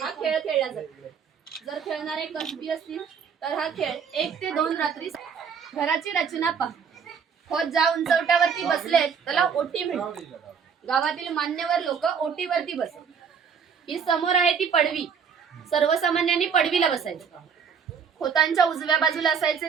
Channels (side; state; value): left; quieter; 6.7 dB